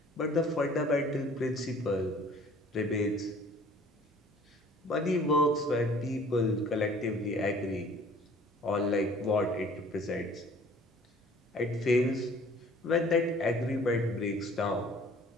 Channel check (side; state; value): both; normal; correlation 0.52